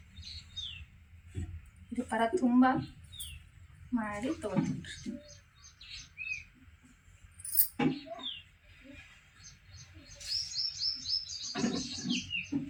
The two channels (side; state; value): both; identical; correlation 1.00